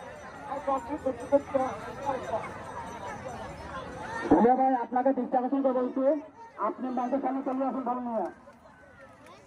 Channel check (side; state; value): both; identical; correlation 1.00